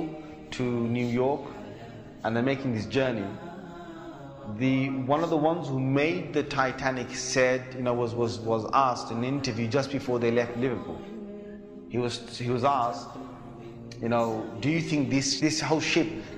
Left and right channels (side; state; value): both; identical; correlation 1.00